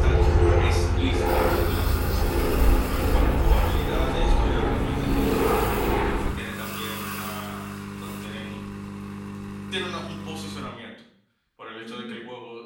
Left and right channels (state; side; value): identical; both; correlation 1.00